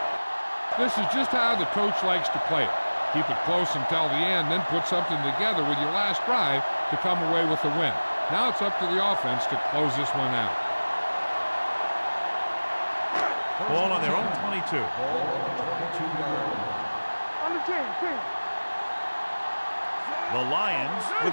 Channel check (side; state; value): both; inverted; correlation -1.00